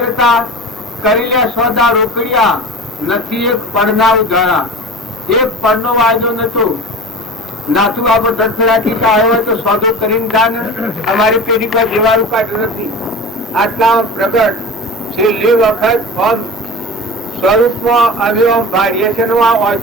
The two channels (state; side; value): normal; both; correlation 0.33